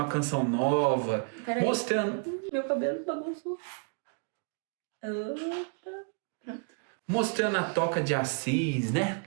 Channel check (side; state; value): left; quieter; 38.0 dB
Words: a Canção Nova, mostrando... Meu cabelo bagunçou. Mostrando a Toca de Assis, né?